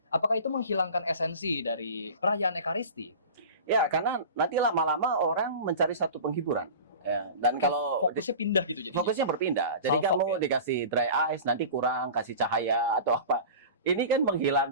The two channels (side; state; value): both; inverted; correlation -0.35